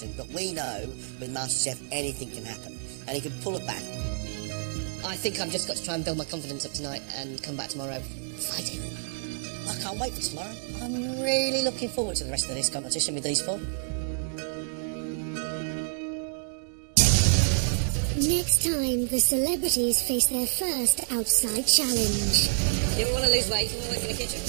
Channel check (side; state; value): left; silent; digital silence